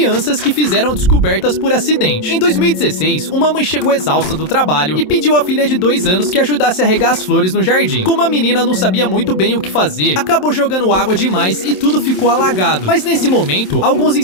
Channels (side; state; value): right; late; 27 ms